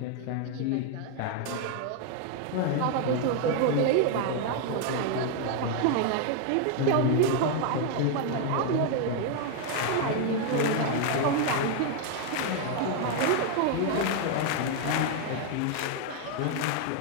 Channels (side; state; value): both; different; correlation 0.00